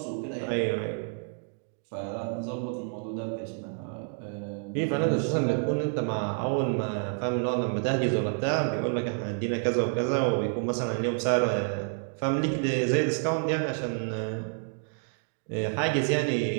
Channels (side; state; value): left; silent; 55 dB below the other